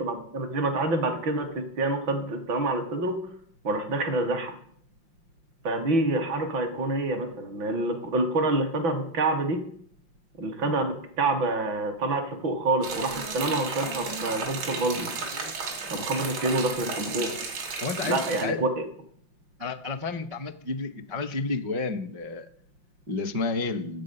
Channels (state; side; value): late; left; 5.7 ms